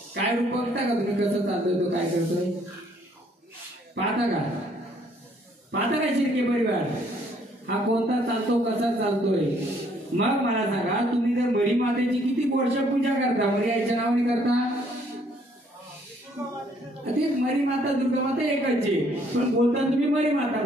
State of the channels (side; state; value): both; normal; correlation 0.65